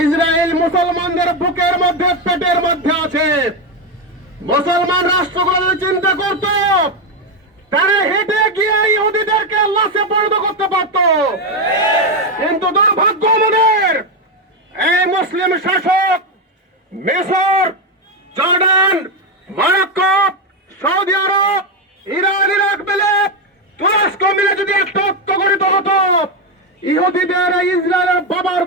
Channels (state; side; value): normal; both; correlation 0.08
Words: মুসলমানদের বুকের মধ্যে পেটের মধ্যে আছে। মুসলমান রাষ্ট্রগুলো চিন্তা করত, তারা হেঁটে গিয়ে ইহুদিদেরকে লাশে পরিণত করতে পারত, কিন্তু দুর্ভাগ্য আমাদের এই মুসলিম শাসক মিশর, জর্ডান, মরক্কো, সৌদি আরব, ইরান, ইরাক মিলে, তুরস্ক মিলে যদি একটা ঐক্যগঠিত হতো, ইহুদিদের ইসরায়েলের বাবার